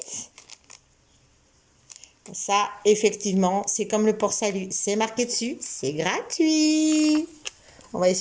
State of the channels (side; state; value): both; identical; correlation 1.00